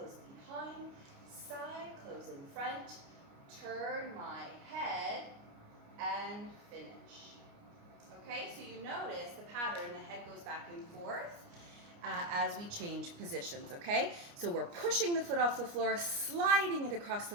behind, side, close in front. Turn my head and finish. Okay, so you notice the pattern, the head goes back and forth as we change positions, okay? So we're pushing the foot off the floor, sliding it across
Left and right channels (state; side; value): late; left; 29 ms